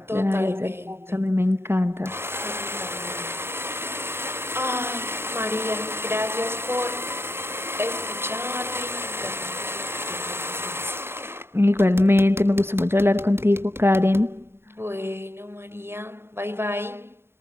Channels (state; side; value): late; left; 0.11 ms